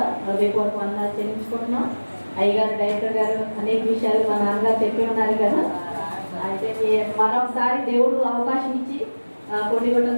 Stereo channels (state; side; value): inverted; both; correlation -1.00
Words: హృదయపూర్వక వందనాలు చెల్లించుకుంటున్నాం. అయ్యగారు డైరెక్టర్ గారు అనేక విషయాలు మా నాన్నగారు చెప్పి ఉన్నారు కదా. అయితే మరొకసారి దేవుడు అవకాశం ఇచ్చి కొన్నిగొట్టం